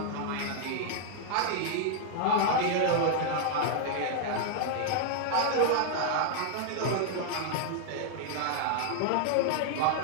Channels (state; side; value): different; both; correlation 0.00